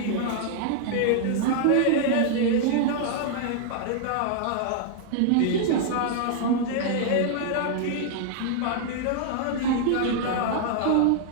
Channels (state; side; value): different; both; correlation -0.01